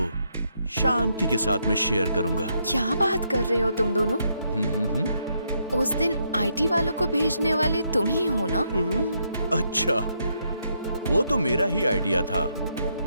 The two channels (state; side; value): inverted; both; correlation -0.77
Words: शांति के साथ मैं शेयर करूंगा। क्या बात कर रहे हो तुम दोनों? उस दिन आईटी वालों को भेजने वाले तुम ही हो ना? अच्छा, वो तो मेरा ही आइडिया था,